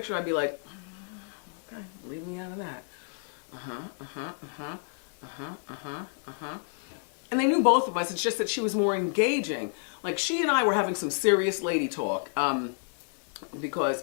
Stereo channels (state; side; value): silent; right; digital silence